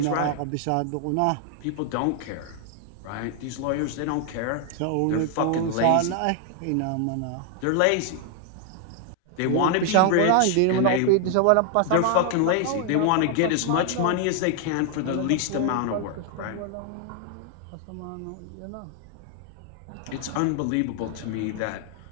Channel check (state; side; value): different; both; correlation 0.00